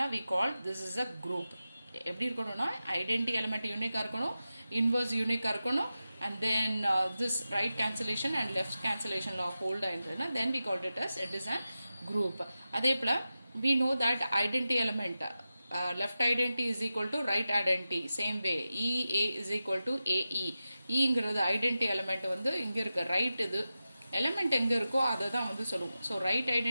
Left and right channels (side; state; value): both; inverted; correlation -0.92